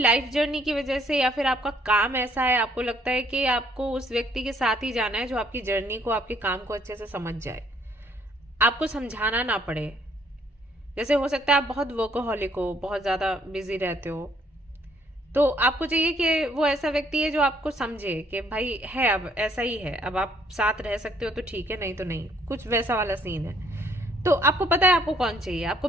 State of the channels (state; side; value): normal; both; correlation 0.64